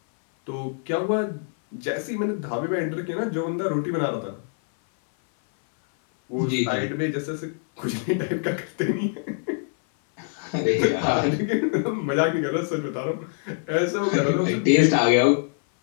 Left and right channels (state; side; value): silent; right; 59 dB below the other